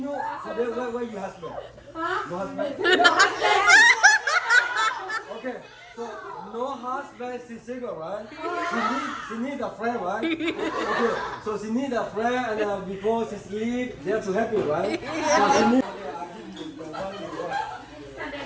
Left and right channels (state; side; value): identical; both; correlation 1.00